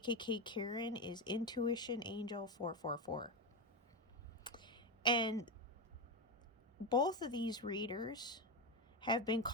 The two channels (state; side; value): normal; both; correlation 0.13